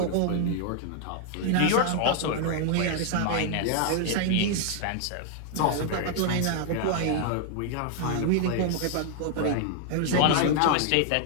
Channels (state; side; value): different; both; correlation 0.00